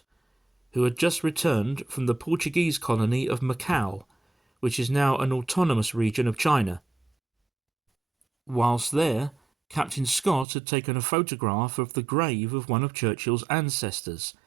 who had just returned from the Portuguese colony of Macau, which is now an autonomous region of China. Whilst there, Captain Scott had taken a photograph of the grave of one of Churchill's ancestors,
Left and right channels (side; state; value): left; drops out; at 10.5 s